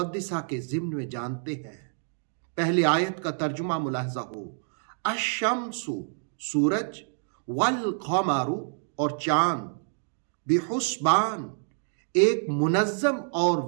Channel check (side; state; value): left; silent; digital silence